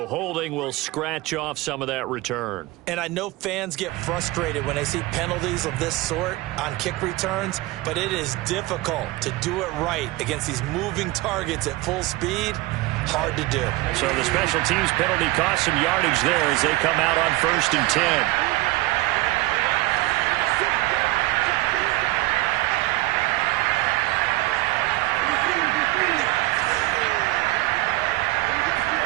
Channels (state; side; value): quieter; left; 19.1 dB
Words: holding will scratch off some of that return. And I know fans get frustrated when they see penalties of this sort on kick returns, but it is difficult to do it right against these moving targets at full speed. Hard to do. So the special teams penalty cost some yardage there as they come out on 1st and 10.